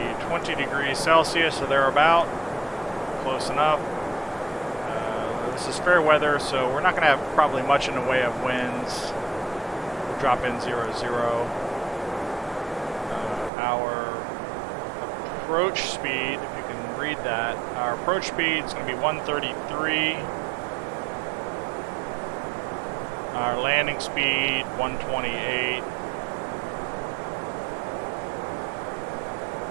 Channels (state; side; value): drops out; left; at 13.5 s